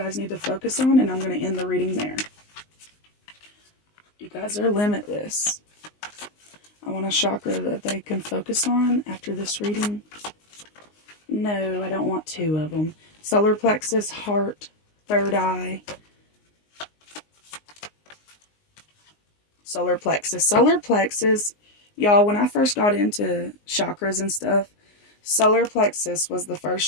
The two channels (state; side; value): late; right; 19 ms